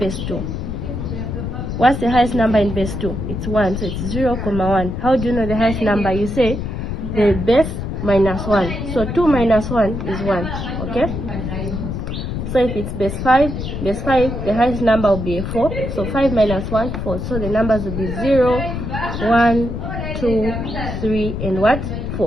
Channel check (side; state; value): left; noise; rumble, 4 dB below the sound